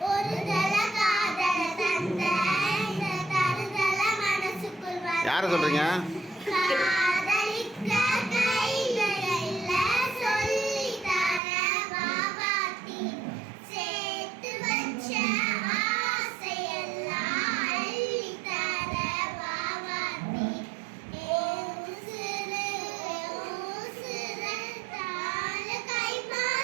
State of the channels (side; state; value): left; drops out; at 11.4 s